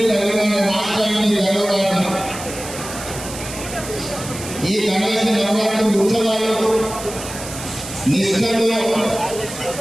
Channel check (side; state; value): right; noise; hiss, 11 dB below the sound